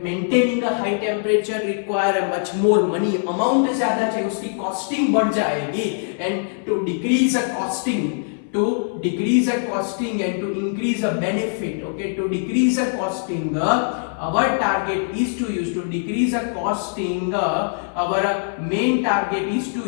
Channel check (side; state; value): right; silent; 61 dB below the other